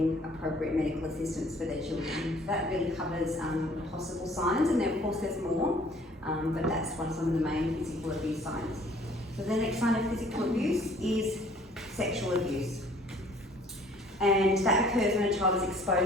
appropriate medical assistance for their children. That really covers possible signs, and then of course there's more, but that's some of the main physical abuse signs. So the next sign of physical abuse is sexual abuse. And that occurs when a child is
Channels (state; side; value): normal; both; correlation 0.55